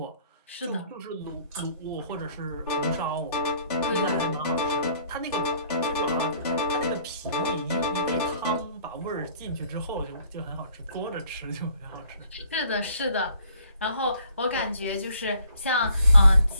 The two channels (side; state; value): both; inverted; correlation -0.61